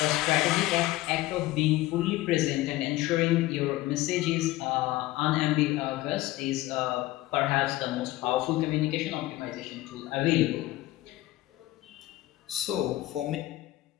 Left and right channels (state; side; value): quieter; right; 17.3 dB